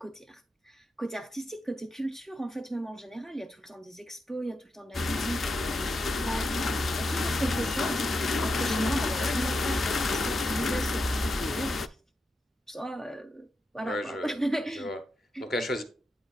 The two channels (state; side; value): normal; both; correlation 0.86